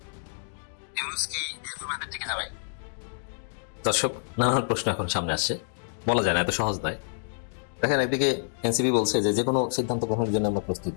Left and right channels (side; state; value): right; silent; digital silence